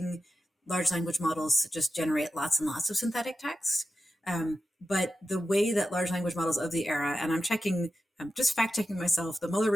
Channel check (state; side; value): normal; both; correlation 0.91